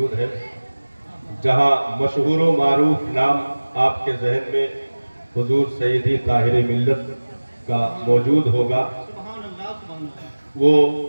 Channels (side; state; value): both; inverted; correlation -1.00